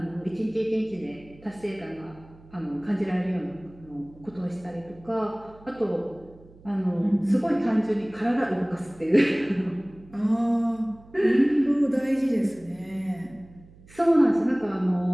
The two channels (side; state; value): right; noise; hum, 23 dB below the sound